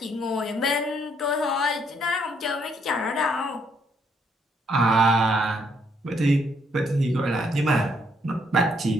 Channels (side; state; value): both; normal; correlation 0.71